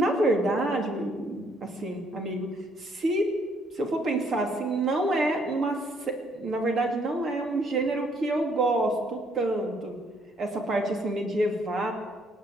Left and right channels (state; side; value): normal; both; correlation 0.67